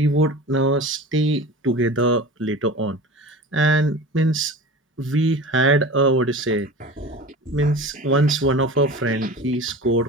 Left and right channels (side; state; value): both; normal; correlation 0.35